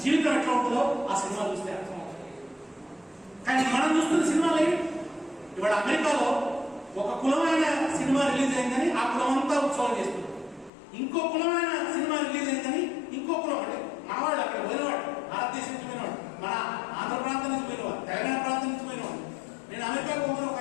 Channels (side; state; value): right; drops out; at 10.7 s